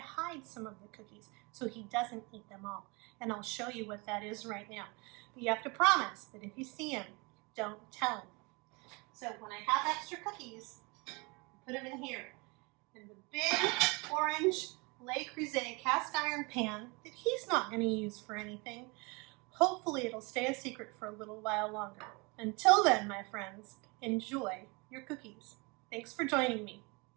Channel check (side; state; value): left; quieter; 28.4 dB